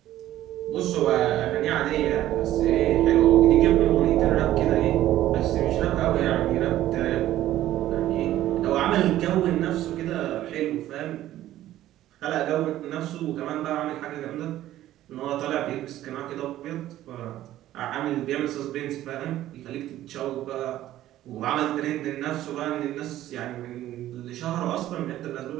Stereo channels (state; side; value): quieter; left; 13.7 dB